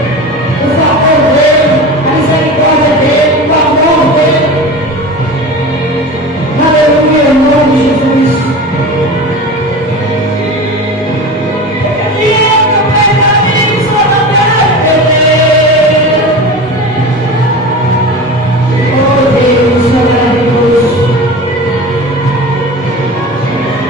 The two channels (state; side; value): normal; both; correlation 0.31